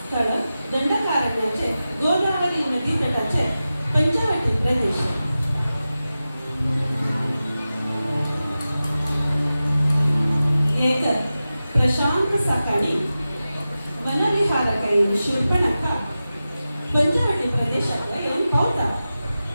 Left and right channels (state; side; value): inverted; both; correlation -0.94